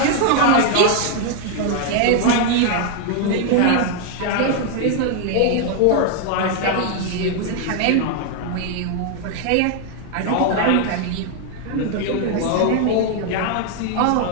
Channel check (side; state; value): both; different; correlation 0.00